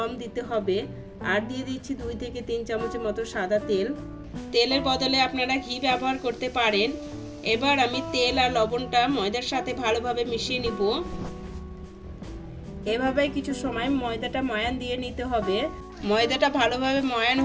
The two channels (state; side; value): identical; both; correlation 1.00